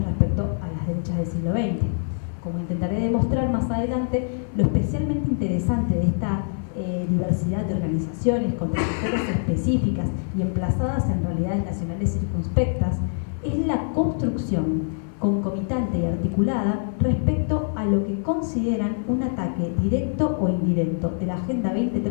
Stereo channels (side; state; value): right; silent; 61 dB below the other